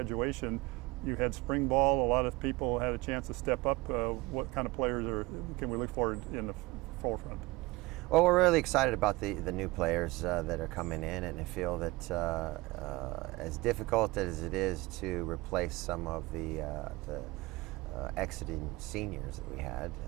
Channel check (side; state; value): left; quieter; 21.9 dB